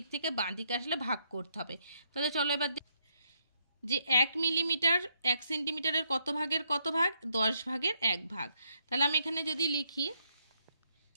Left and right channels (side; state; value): both; inverted; correlation -0.75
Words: থেকে বাঁ দিকে আসলে ভাগ করতে হবে। তাহলে চলো এবার যে 1 মিলিমিটার 1 সেন্টিমিটারের কত ভাগের কত ভাগ? 10 ভাগের 1 ভাগ। তাহলে আমি এখানে যদি লিখি